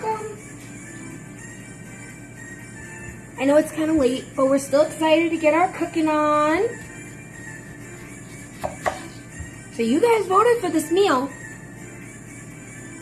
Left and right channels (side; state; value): both; identical; correlation 1.00